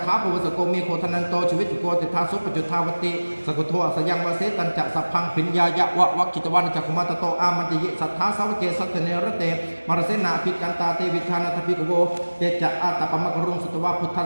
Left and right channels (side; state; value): both; inverted; correlation -1.00